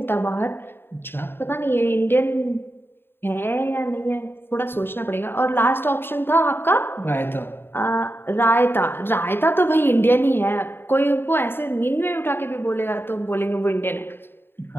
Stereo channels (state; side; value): late; right; 0.11 ms